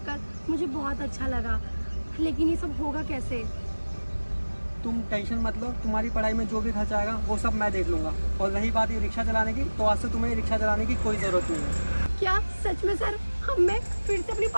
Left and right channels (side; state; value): both; inverted; correlation -1.00